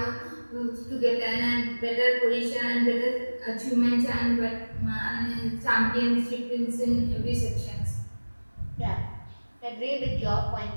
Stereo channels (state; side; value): inverted; both; correlation -1.00